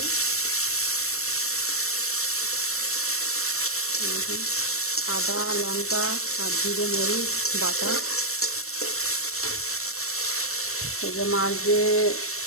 আদা লঙ্কা আর জিরে মরিচ বাটা। এই যে মাছ দিয়ে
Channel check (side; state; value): right; late; 0.63 ms